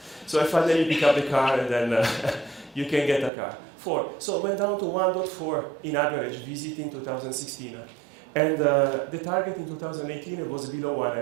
So finally you pick up the car, and then you can get a car. 4. So it went down to 1.4 in average visit in 2016. And the target in 2018 was below 1.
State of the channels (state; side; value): drops out; left; at 3.3 s